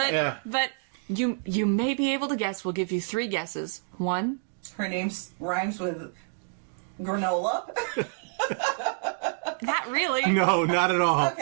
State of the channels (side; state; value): left; silent; digital silence